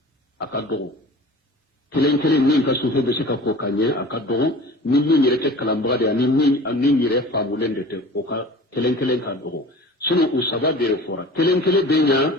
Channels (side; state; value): both; normal; correlation 0.40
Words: akado kelen kelen ni ka sufe be sika ko kanye akado ni ni yere kalambara de ni yere famulende te o ka kelen kelen ka do sunu usaba be fora kelen kelen benya